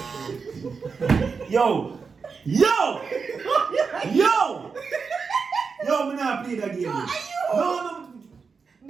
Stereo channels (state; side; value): quieter; left; 5.2 dB